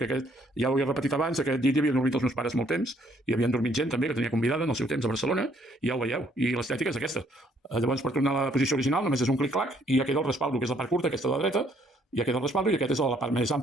aquest, ja ho he repetit abans, aquest llit hi havien dormit els meus pares molt temps, i havien dormit gent també que tenia convidada en el seu temps a Barcelona, i ja ho veieu, i l'estètica és aquesta. Llavors per tornar a la posició original només és un clic-clac i ja queda el respaldo, que és la part curta, aquesta de la dreta, ja queda el respaldo i aquest és la part més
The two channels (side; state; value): both; normal; correlation 0.66